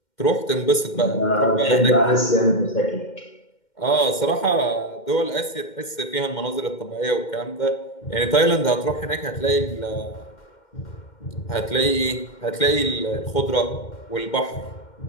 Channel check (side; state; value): right; late; 2.1 ms